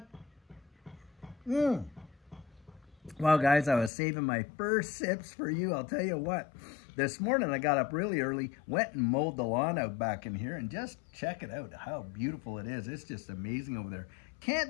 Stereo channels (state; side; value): drops out; right; at 3.9 s